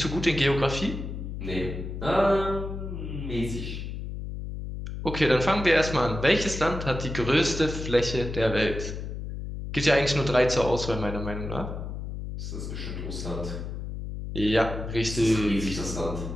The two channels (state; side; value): noise; left; hum, 6 dB below the sound